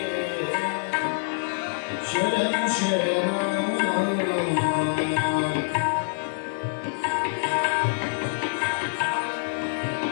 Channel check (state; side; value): silent; right; digital silence